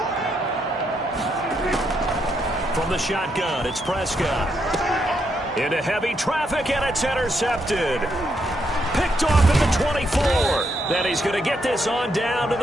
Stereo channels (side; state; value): both; normal; correlation 0.78